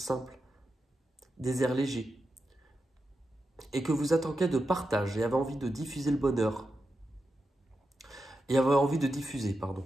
des airs légers. et que vous êtes en quête de partage et avez envie de diffuser le bonheur,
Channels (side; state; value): both; normal; correlation 0.88